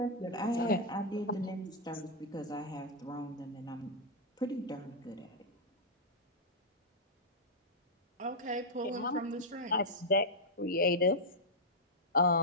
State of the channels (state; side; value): normal; both; correlation -0.06